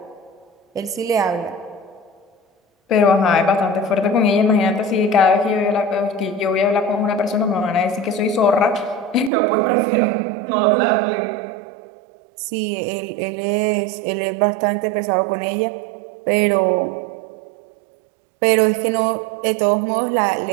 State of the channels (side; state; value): left; drops out; at 9.3 s